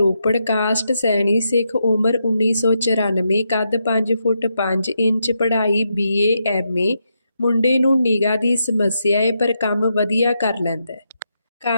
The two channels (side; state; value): both; inverted; correlation -0.83